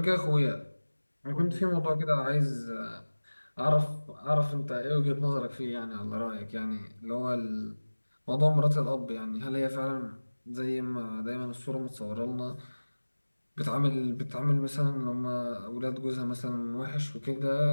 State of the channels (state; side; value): inverted; both; correlation -1.00